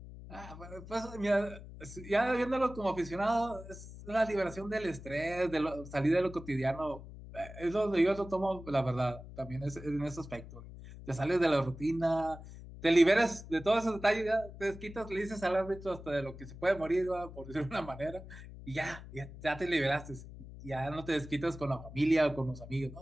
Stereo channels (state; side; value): noise; left; hum, 14 dB below the sound